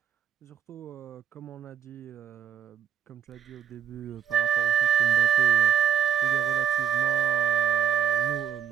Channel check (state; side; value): quieter; left; 8.7 dB